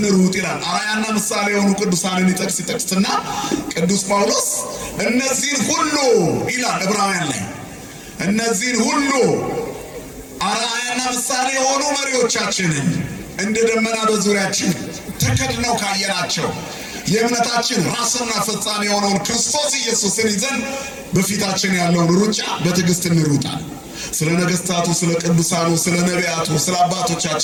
ይላል። አርአያና ምሳሌ የሆኑ ቅዱሳንን ይጠቅስና ቅዱስ ጳውሎስ እነዚህን ሁሉ ይላል ዕብራውያን ላይ እነዚህን ሁሉ አርአያና ምሳሌ የሆኑ መሪዎቻችንን እንደ ደመና በዙሪያችን ተከድነው ካየናቸው የእምነታችን ራስና ፈጻሚ የሆነውን ክርስቶስ ኢየሱስን ይዘን በፊታችን ያለውን ሩጫ በትዕግስት እንሩጣል። ስለ ነገሥታቱ፣ ስለ ቅዱሳኑ፣ ስለ ነቢያቱ፣ ስለ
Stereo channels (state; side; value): identical; both; correlation 1.00